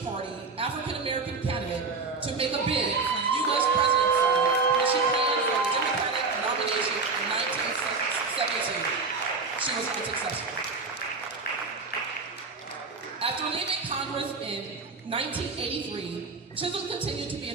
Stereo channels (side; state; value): left; quieter; 4.3 dB